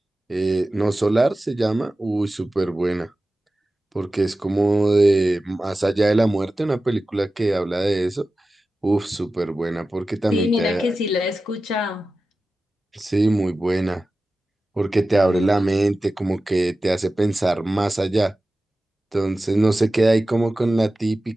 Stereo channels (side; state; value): both; normal; correlation 0.95